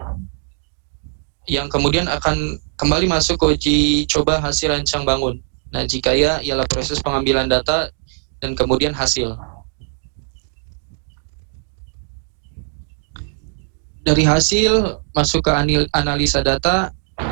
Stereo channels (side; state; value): left; silent; 66 dB below the other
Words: yang kemudian akan kembali masuk ke uji coba hasil rancang bangun. Nah, jika ya, ialah proses pengambilan data dan kemudian hasil. Dari hasil masuk ke analisa data,